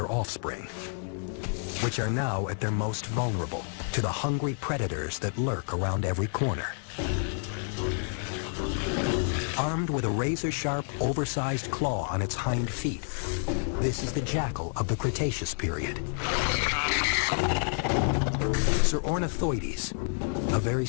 offspring, which are now at their most vulnerable to the hungry predators that lurk around every corner. Armed with a razor-sharp, oversized claw on its hind feet, this is the jackal of the Cretaceous period. Ornithoides, a very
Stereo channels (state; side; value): silent; right; 58 dB below the other